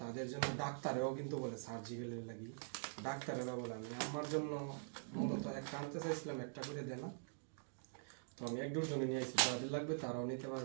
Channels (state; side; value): silent; left; digital silence